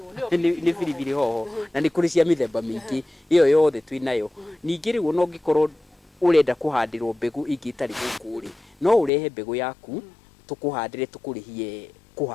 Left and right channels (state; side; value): drops out; right; at 9.1 s